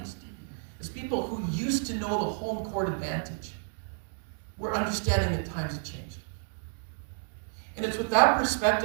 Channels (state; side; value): silent; left; 57 dB below the other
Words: as people who used to know the home court advantage, we're understanding that times have changed. And it's with that